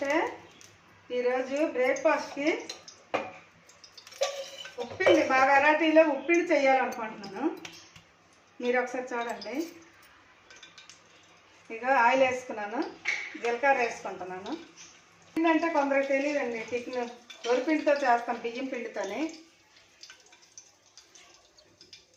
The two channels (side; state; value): both; identical; correlation 1.00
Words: ఈరోజు బ్రేక్ఫాస్ట్కి ఉప్పిండి, మా వెరైటీలో ఉప్పిండి చేయాలనుకుంటున్నాను. మీరు ఒకసారి చూడండి. ఇక ఆయిల్ వేసుకున్నాను, జీలకర్ర వేసుకుంటున్నాను. ఏంటంటే కొందరికి తెలియదండి, టిఫిన్ వరిపిండితో చేస్తాం, బియ్యం పిండితోనే.